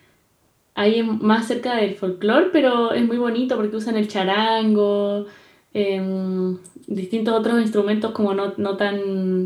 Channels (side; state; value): both; identical; correlation 1.00